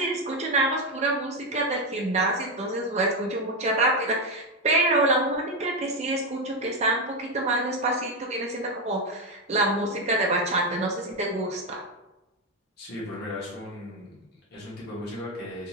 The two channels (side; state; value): both; normal; correlation 0.08